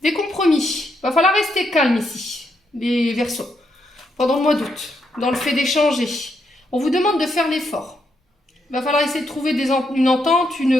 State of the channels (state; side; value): normal; both; correlation 0.79